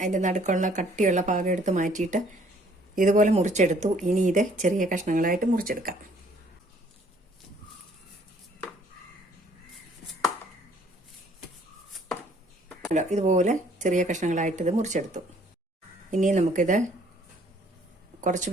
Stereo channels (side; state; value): both; normal; correlation 0.60